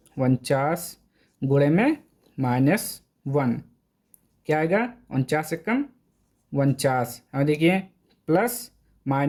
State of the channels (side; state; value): both; identical; correlation 1.00